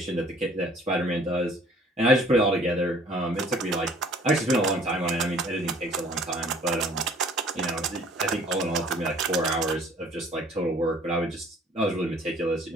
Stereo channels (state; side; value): normal; both; correlation 0.54